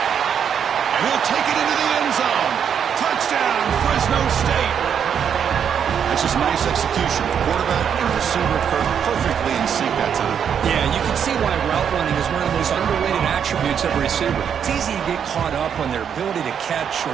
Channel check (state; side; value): quieter; left; 8.0 dB